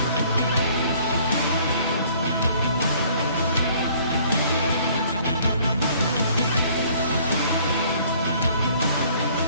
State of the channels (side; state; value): both; inverted; correlation -0.57